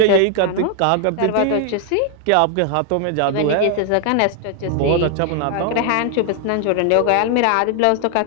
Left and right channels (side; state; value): both; different; correlation 0.00